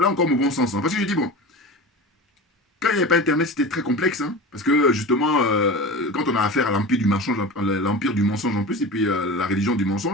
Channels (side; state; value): both; normal; correlation 0.31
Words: encore mon bon sens. Hein, parce que je dis, bon, quand il n'y avait pas Internet, c'était très complexe. Hein, parce que justement, quand on a affaire à l'empire du mensonge en plus, et puis la religion du